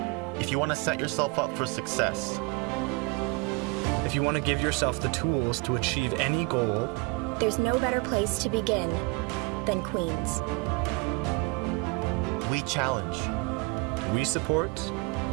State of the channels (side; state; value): left; quieter; 27.1 dB